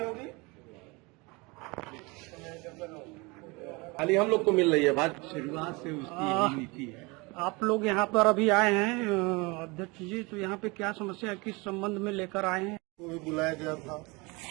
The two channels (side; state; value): left; quieter; 26.3 dB